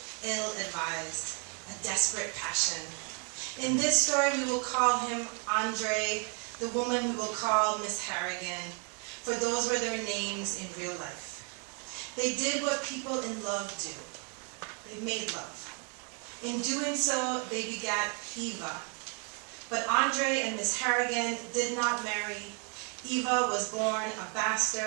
ill-advised, a desperate passion. In this story, we will call him Andre. The woman we will call Miss Harrigan, for those were their names in real life. They did what people in love do. They made love. In doing so, they begat Eva. But Andre and Miss Harrigan did not marry. Eva was born a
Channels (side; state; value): left; quieter; 35.2 dB